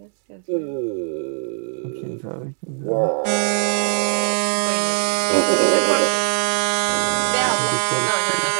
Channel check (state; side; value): silent; left; 65 dB below the other